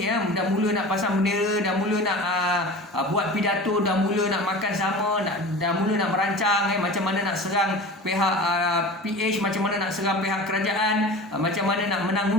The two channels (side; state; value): both; normal; correlation 0.35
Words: ya, dah mula nak pasang bendera, dah mula nak buat pidato, dah mula nak makan sama, dah mula nak merancang macam mana nak serang pihak PH, macam mana nak serang pihak kerajaan, macam mana nak menang